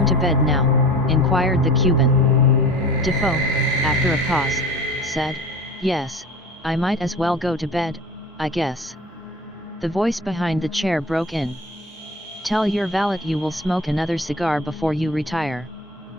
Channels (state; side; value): normal; both; correlation 0.38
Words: to bed now?" inquired the Cuban. Defoe, after a pause, said, "Yes, I might as well go to bed, I guess." The voice behind the chair broke in. "Tell your valet you will smoke another cigar before you retire."